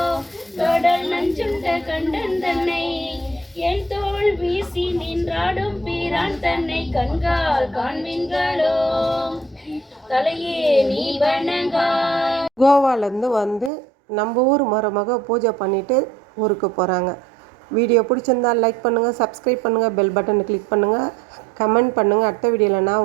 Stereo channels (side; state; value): left; drops out; at 13.7 s